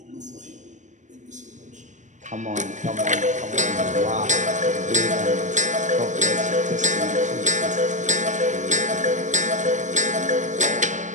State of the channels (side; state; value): left; late; 0.35 ms